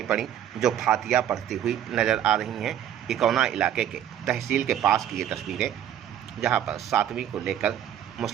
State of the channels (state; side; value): quieter; left; 10.5 dB